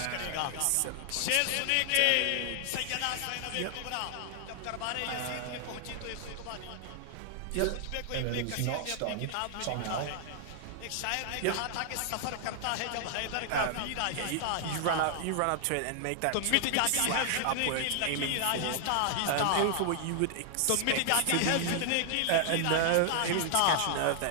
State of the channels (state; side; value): different; both; correlation 0.00